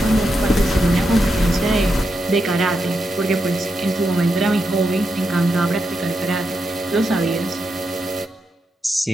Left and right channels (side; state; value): both; normal; correlation 0.85